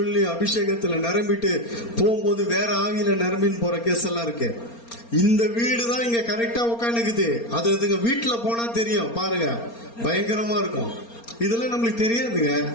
அபிஷேகத்துல நிரம்பிட்டு போகும்போது வேற ஆவியில நிரம்பின்னு போற கேஸ் எல்லாம் இருக்கு. இந்த வீடு தான் இங்க கரெக்டா உட்காந்துக்குது, அது அதுங்க வீட்டுல போனா தெரியும் பாருங்க, பயங்கரமா இருக்கும். இதெல்லாம் நம்மளுக்கு தெரியாதுங்க.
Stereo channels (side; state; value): right; late; 4.3 ms